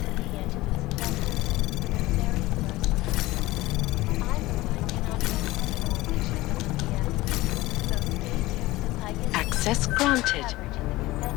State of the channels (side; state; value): right; quieter; 18.7 dB